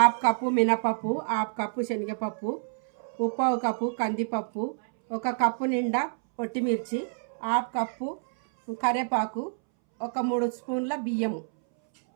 కప్పు మినపప్పు, హాఫ్ కప్పు శనగపప్పు, ముప్పావు కప్పు కందిపప్పు, 1 కప్పు నిండా పొట్టిమిర్చి, హాఫ్ కప్పు కరివేపాకు, 3 స్పూన్ల బియ్యము,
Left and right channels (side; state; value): left; silent; 60 dB below the other